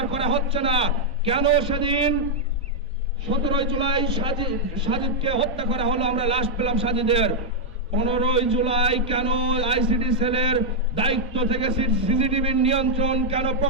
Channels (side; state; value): both; normal; correlation -0.03